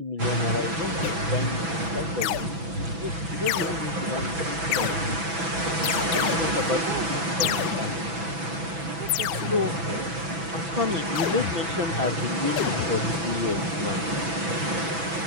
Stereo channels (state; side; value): late; left; 6.0 ms